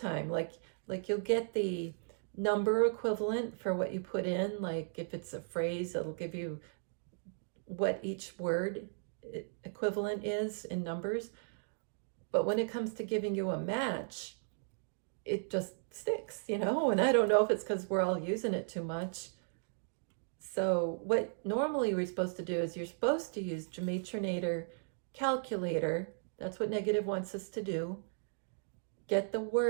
Like you'll get the number equivalent for what you put in. Like if it's a phrase, it'll give you what each word equivalent is in numbers. But when it comes to giving you a match, it just sticks, you know, and I don't know if it's because we're all using it too much. So what normally we're supposed to do is you're supposed to use Gematria calculator. That's what negative wants us to do. Get the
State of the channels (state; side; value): silent; left; digital silence